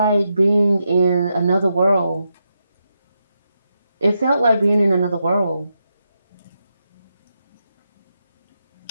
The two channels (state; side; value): inverted; both; correlation -0.85